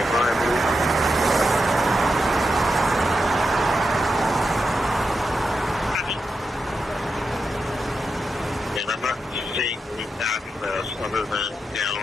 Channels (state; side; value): normal; both; correlation 0.87